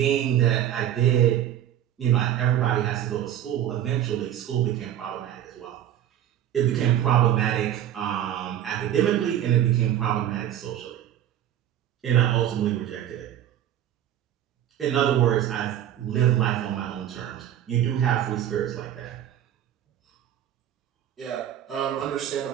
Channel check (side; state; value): left; quieter; 11.1 dB